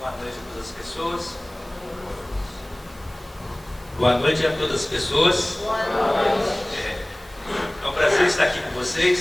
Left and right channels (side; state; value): right; noise; hiss, 27 dB below the sound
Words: noite a todas as pessoas. Boa noite a todas as pessoas. Boa noite. É um prazer estar aqui com